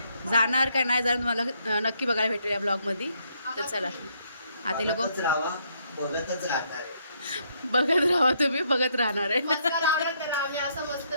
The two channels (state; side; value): inverted; both; correlation -0.72